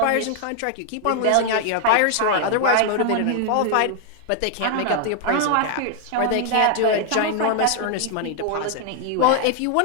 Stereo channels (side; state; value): both; different; correlation 0.00